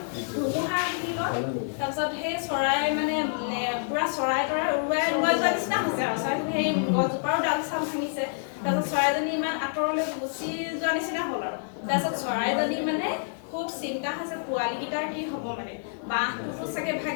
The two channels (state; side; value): silent; right; digital silence